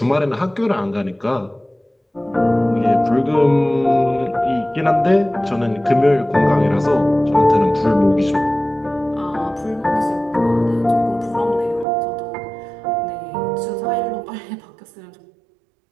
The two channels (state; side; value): drops out; left; at 11.9 s